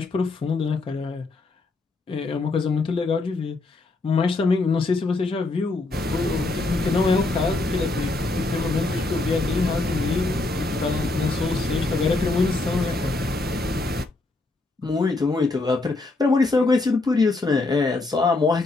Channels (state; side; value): quieter; right; 3.3 dB